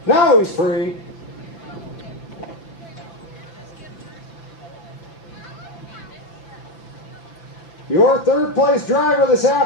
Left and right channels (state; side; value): late; right; 6.0 ms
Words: Now he's free. Your third place driver this